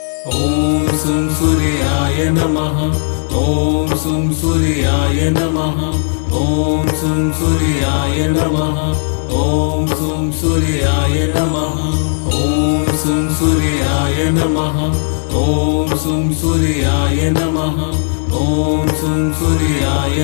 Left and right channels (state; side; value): silent; right; digital silence